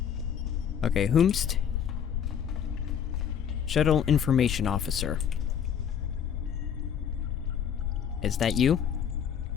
Okay, whomst? Shuttle Information Officer. Is that you?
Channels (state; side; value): quieter; right; 8.3 dB